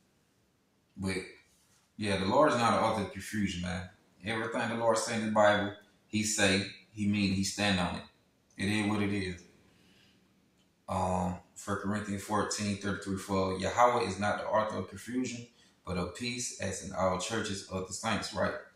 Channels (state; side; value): identical; both; correlation 1.00